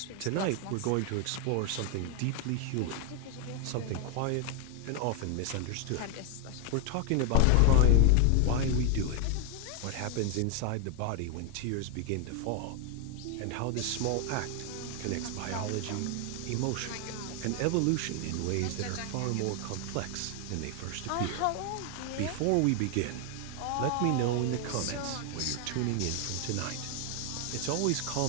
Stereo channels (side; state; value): both; different; correlation 0.00